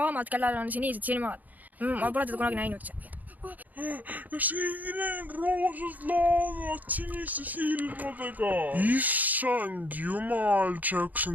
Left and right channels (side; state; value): left; late; 0.081 ms